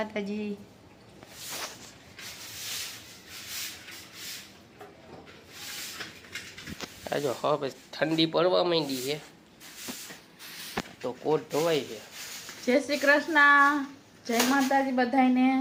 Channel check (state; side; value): identical; both; correlation 1.00